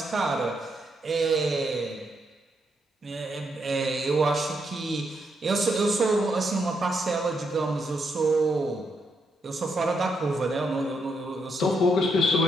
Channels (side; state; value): both; normal; correlation 0.79